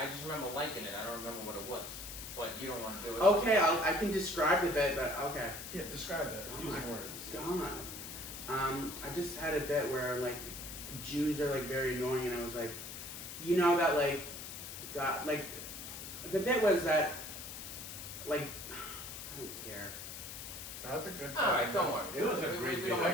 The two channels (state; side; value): noise; left; hiss, 9 dB below the sound